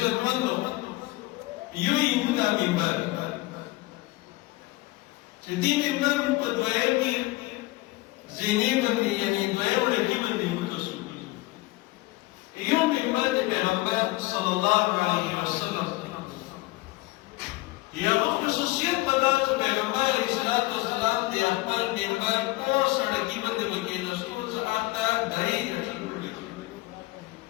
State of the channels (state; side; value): quieter; right; 20.5 dB